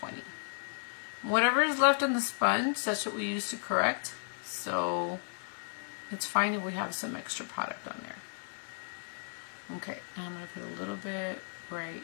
Whatever is left on the sponge, that's what we use to correct. So it's fine if we have some extra product on there. Okay, now I'm going to put a little bit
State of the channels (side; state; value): right; silent; digital silence